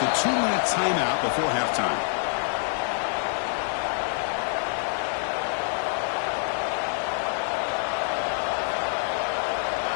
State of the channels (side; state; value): right; silent; digital silence